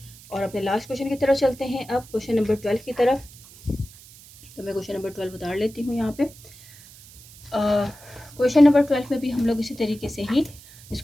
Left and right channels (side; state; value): right; noise; hiss, 21 dB below the sound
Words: और अपने लास्ट क्वेश्चन की तरफ चलते हैं, अब क्वेश्चन नंबर 12 की तरफ। तो मैं क्वेश्चन नंबर 12 उतार लेती हूँ यहाँ पे। क्वेश्चन नंबर 12 में भी हम लोग इसी तरीके से ही